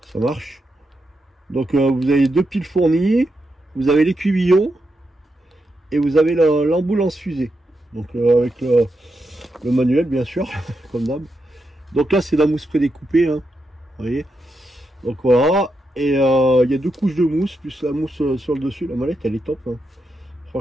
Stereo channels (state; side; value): normal; both; correlation 0.85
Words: Ça marche. Donc vous avez 2 piles fournies. Vous avez l'écuillon. Et vous avez l'ambulance fusée. Donc avec le manuel, bien sûr, comme d'hab. Donc là, c'est la mousse prédécoupée, hein, vous voyez. Donc voilà. Et il y a 2 couches de mousse, plus la mousse sur le dessus. La mallette, elle est top. Hein.